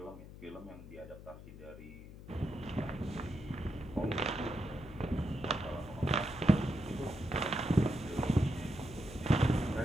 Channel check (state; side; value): noise; left; hum, 15 dB below the sound